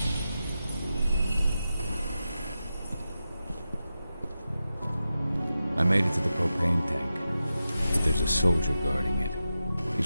I made it to the propane tank, but there's a soldier guarding it.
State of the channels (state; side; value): inverted; both; correlation -0.91